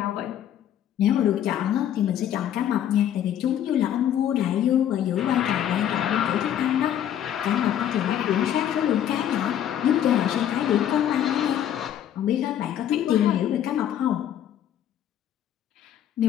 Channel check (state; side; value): quieter; right; 10.5 dB